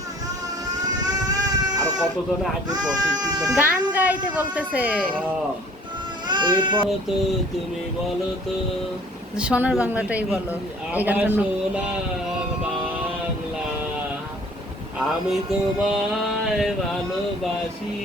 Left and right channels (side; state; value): both; normal; correlation 0.53